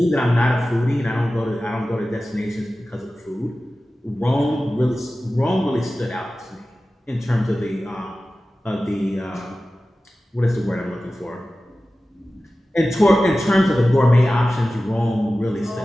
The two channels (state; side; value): normal; both; correlation 0.95